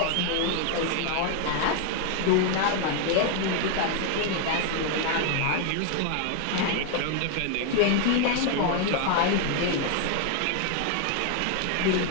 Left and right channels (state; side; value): different; both; correlation 0.01